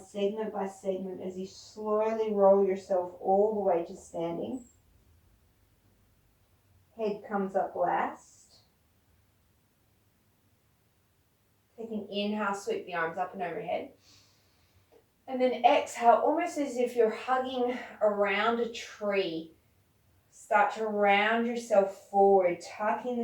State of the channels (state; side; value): identical; both; correlation 1.00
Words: segment by segment as you slowly roll yourself all the way to standing. Head comes up last. Take an inhale, sweep the arms up and overhead. And then exhale, almost as if you're hugging around a tree. Start to round yourself forward, tucking